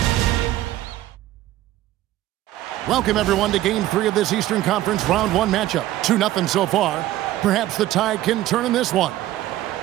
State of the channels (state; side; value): quieter; left; 14.7 dB